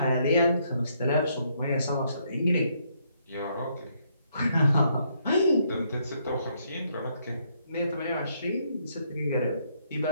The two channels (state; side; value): inverted; both; correlation -0.72